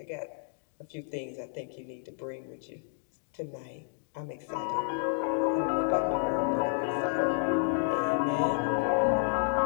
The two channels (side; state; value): right; silent; 57 dB below the other